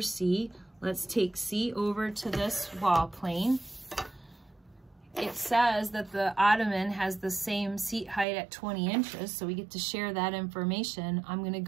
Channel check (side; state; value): left; drops out; at 8.2 s